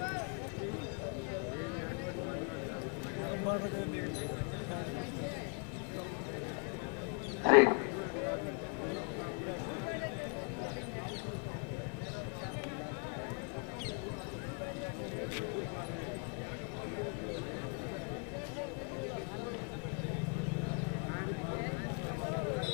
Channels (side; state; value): right; quieter; 37.9 dB